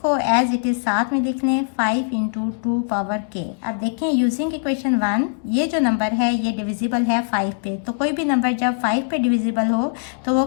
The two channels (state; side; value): silent; right; 57 dB below the other